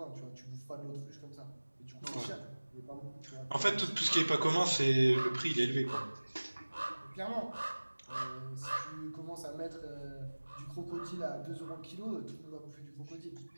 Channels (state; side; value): inverted; both; correlation -1.00